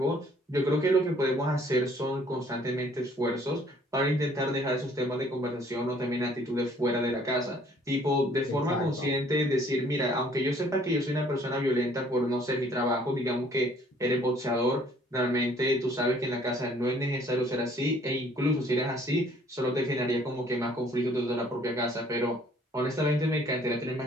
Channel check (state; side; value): normal; both; correlation 0.59